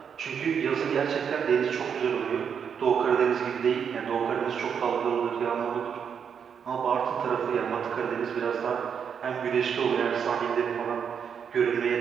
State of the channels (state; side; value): quieter; left; 7.3 dB